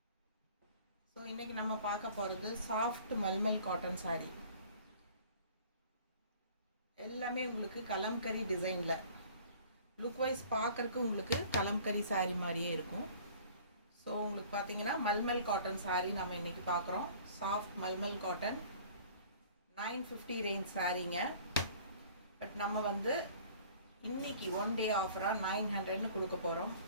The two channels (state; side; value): inverted; both; correlation -0.50